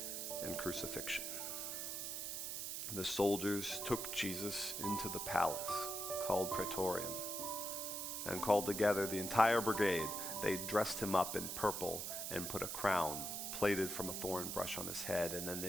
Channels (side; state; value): right; noise; hiss, 3 dB below the sound